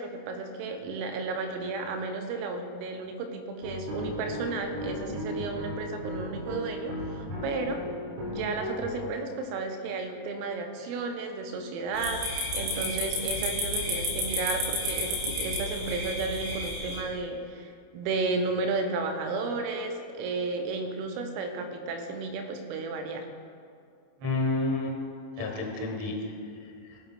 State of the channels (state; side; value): late; left; 29 ms